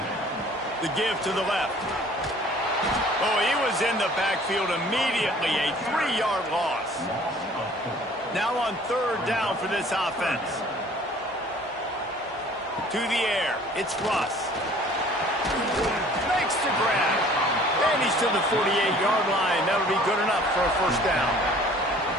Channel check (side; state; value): both; normal; correlation 0.52